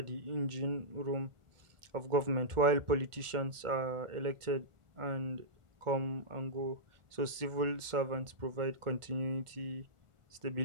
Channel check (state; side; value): late; left; 1.4 ms